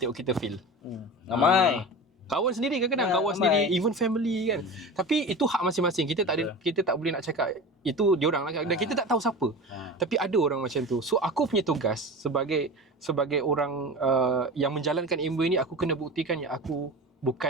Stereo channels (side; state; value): both; normal; correlation 0.31